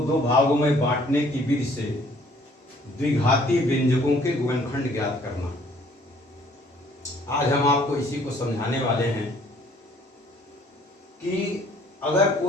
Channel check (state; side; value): normal; both; correlation 0.59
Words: दो भागों में बांटने की विधि से द्विघाती व्यंजकों के गुणनखंड ज्ञात करना। आज हम आपको इसी को समझाने वाले हैं कि अगर